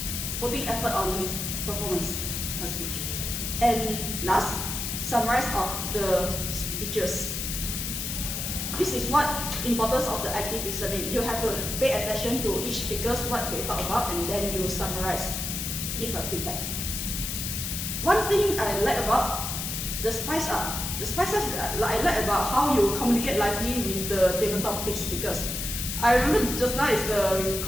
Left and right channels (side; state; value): left; noise; hiss, 3 dB below the sound